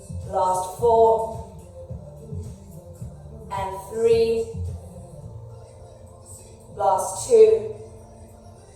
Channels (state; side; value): identical; both; correlation 1.00